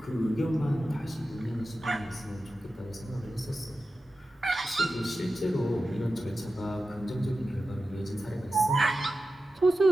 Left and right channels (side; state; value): both; normal; correlation 0.93